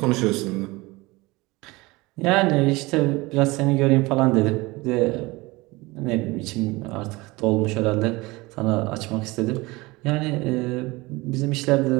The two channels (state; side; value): quieter; left; 22.4 dB